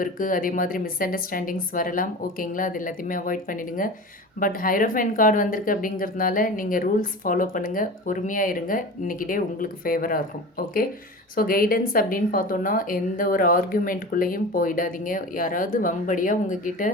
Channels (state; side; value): normal; both; correlation 0.33